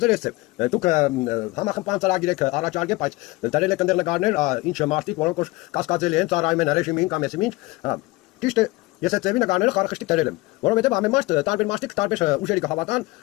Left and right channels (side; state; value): right; quieter; 21.8 dB